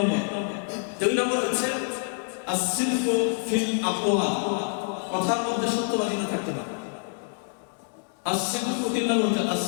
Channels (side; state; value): right; silent; digital silence